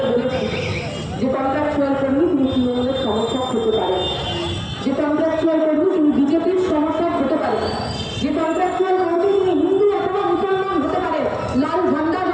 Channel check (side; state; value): both; identical; correlation 1.00